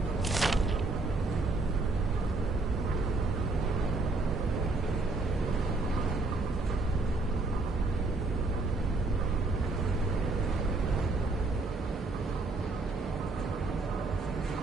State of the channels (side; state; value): left; quieter; 3.3 dB